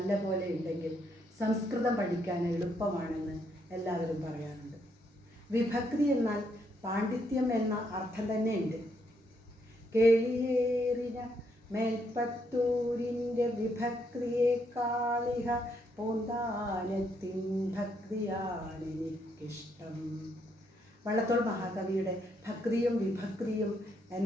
ഉണ്ടെങ്കിൽ സംസ്കൃതം പഠിക്കാൻ എളുപ്പമാണെന്ന് എല്ലാവരും പറയാറുണ്ട്. വിഭക്തി എന്നാൽ പാണ്ഡിത്യം എന്ന അർത്ഥം തന്നെയുണ്ട്. കേളിയേറിന മേൽപ്പത്തൂരിൻ്റെ വിഭക്തിയേക്കാളിഹ പോന്താനത്തിൻ ഭക്തിയാണെനിക്കിഷ്ടം. വള്ളത്തോൾ മഹാകവിയുടെ ഭക്തിയും വിഭക്തിയും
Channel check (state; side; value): normal; both; correlation 0.75